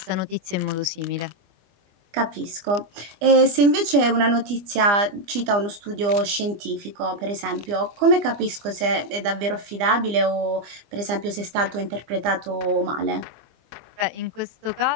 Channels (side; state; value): left; late; 25 ms